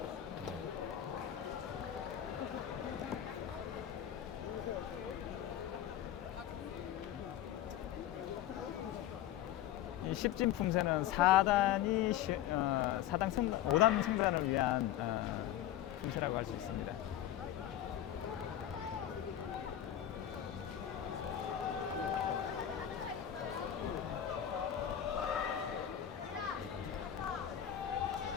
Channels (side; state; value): right; quieter; 11.3 dB